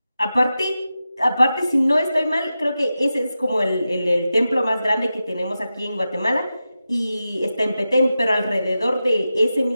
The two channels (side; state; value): both; inverted; correlation -0.92